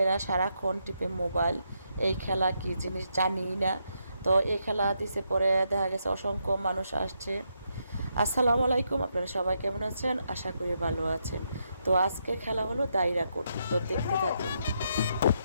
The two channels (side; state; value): both; inverted; correlation -0.80